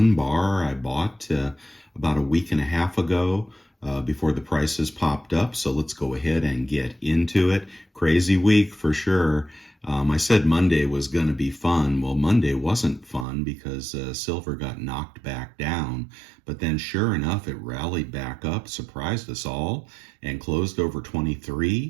bar I bought about a week and a half ago before the prices popped up. So let's go ahead and get into it. Crazy week for sure. I said Monday was going to be fun. Well, Monday wasn't fun because silver got knocked back down. But then sure enough, it rallied back up, surprised us all, and closed over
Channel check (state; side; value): drops out; left; at 13.2 s